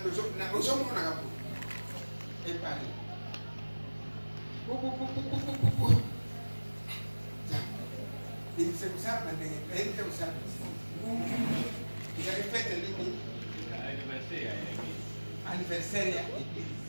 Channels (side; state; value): both; inverted; correlation -1.00